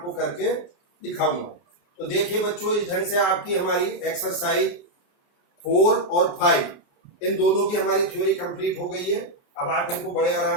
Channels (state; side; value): late; right; 29 ms